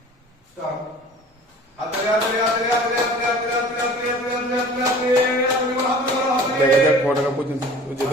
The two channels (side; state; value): both; normal; correlation 0.45